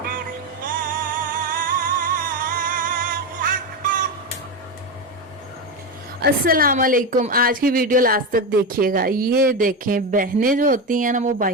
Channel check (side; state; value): both; normal; correlation 0.15